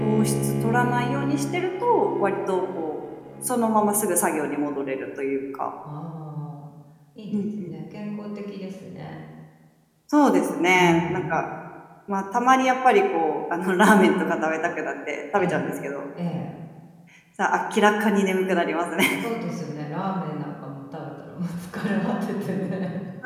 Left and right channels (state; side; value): identical; both; correlation 1.00